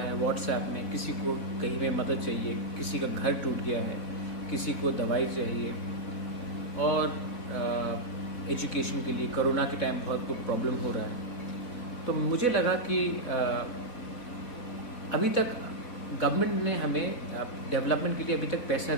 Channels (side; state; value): right; late; 3.9 ms